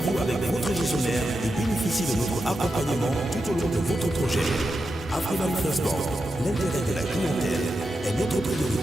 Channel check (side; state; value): both; normal; correlation 0.88